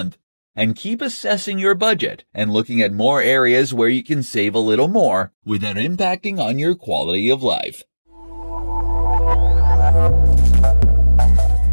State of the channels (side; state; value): both; inverted; correlation -1.00